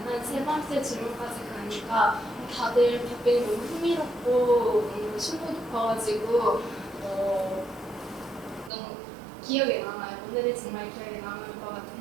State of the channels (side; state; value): left; drops out; at 8.7 s